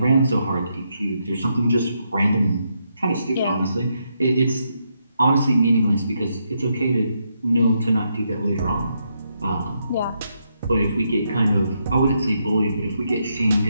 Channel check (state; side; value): inverted; both; correlation -0.80